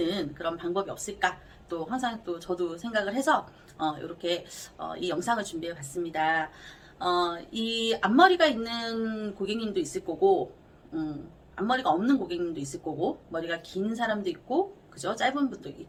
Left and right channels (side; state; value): both; identical; correlation 1.00